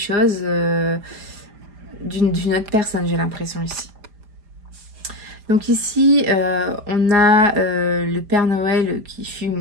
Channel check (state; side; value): late; left; 5.0 ms